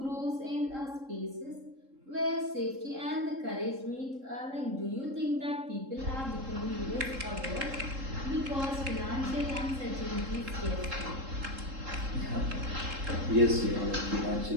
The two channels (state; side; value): late; left; 3.7 ms